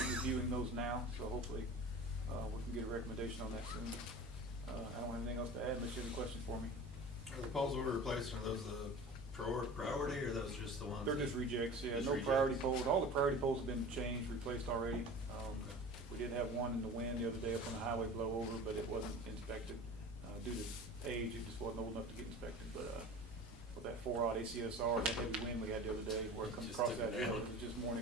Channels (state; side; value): normal; both; correlation 0.37